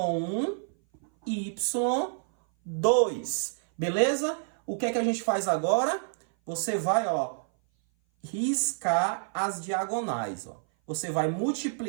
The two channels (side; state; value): left; silent; 57 dB below the other